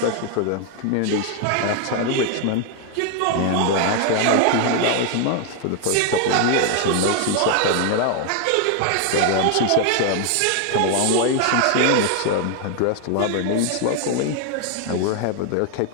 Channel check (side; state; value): both; different; correlation 0.00